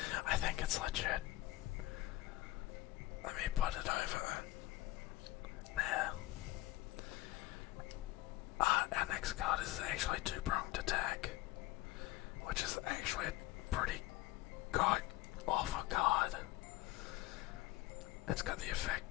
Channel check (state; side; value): quieter; right; 17.0 dB